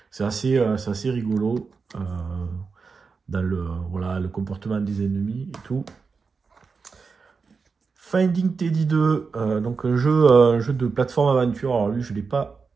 C'est assez rigolo dans le comportement des ennemis et tout. Finding Teddy 2, donc un jeu de plateforme aventure. Alors lui je l'ai pas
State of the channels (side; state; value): left; quieter; 5.0 dB